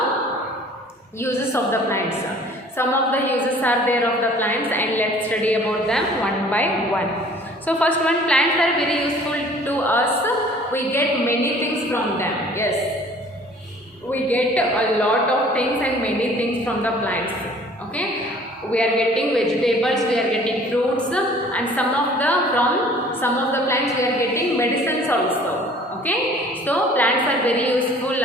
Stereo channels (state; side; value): normal; both; correlation 0.51